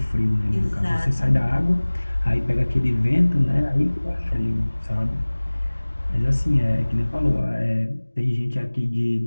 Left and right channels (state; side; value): inverted; both; correlation -1.00